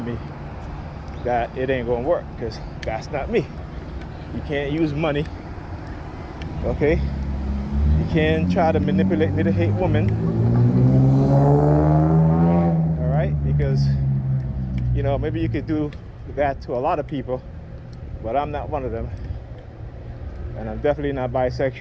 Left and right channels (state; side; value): identical; both; correlation 1.00